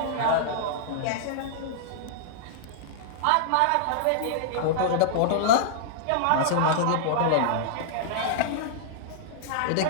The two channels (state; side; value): different; both; correlation -0.02